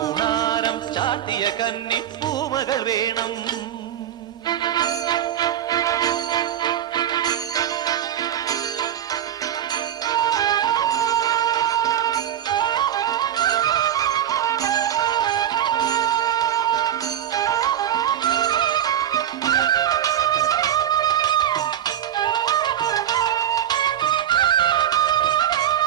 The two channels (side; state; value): left; quieter; 10.7 dB